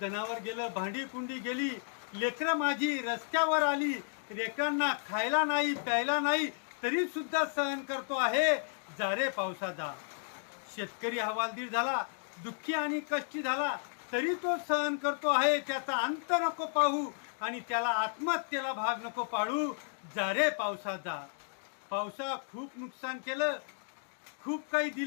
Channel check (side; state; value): right; silent; digital silence